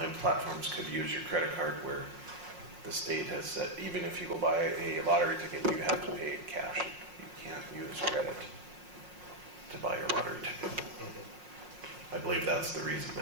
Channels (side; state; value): left; late; 5.5 ms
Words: platforms could use your credit card, where the state has said even if you go buy a lottery ticket, you have to pay cash. You can't use credit to buy your lottery ticket. I believe that's the reason